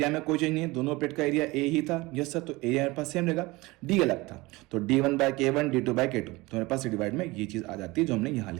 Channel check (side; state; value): left; quieter; 22.0 dB